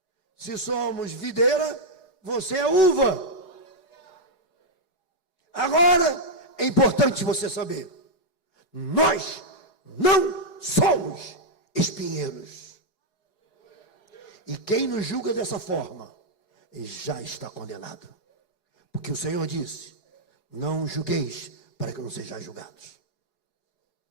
Se somos videira, você é uva. Agora, é importante você saber: nós não somos espinheiros. E quem nos julga dessa forma, já está condenado. Porque o Senhor disse: não julgueis para que não sejais julgados.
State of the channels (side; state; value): right; late; 4.8 ms